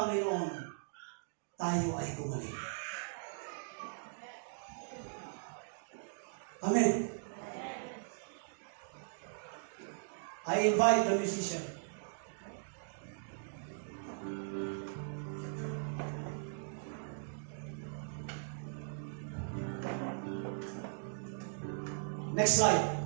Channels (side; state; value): left; silent; digital silence